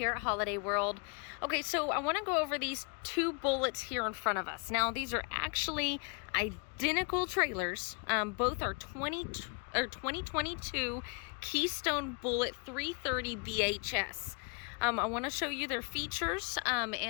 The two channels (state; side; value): quieter; right; 35.1 dB